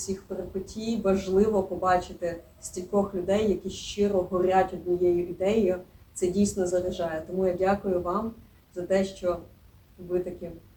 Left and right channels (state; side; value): identical; both; correlation 1.00